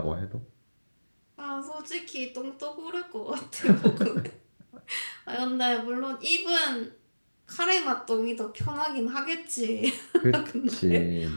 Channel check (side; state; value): both; inverted; correlation -1.00